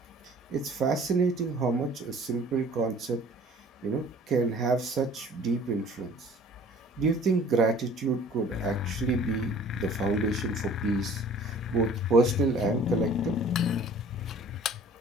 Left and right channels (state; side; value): normal; both; correlation 0.49